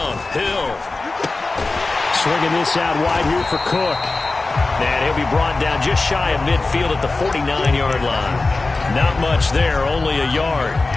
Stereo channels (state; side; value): quieter; right; 3.5 dB